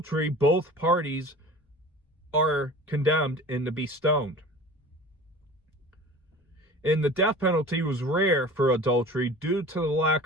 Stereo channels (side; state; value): both; normal; correlation 0.40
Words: both parties are condemned and to be stoned. And the death penalty was rare for adultery due to the lack